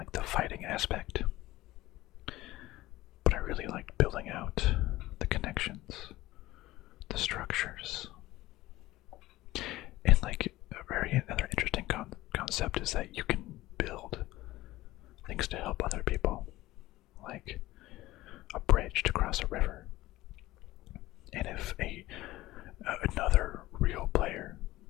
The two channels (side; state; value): right; quieter; 17.3 dB